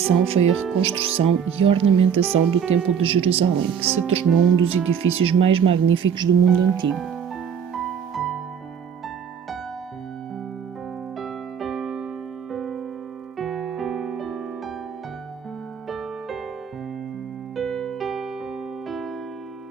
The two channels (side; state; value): left; quieter; 7.5 dB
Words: foi a reconstrução e ornamentação do Templo de Jerusalém, que se tornou um dos edifícios mais magníficos do mundo antigo.